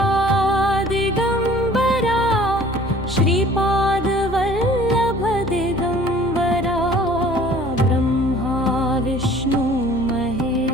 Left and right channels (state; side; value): normal; both; correlation 0.51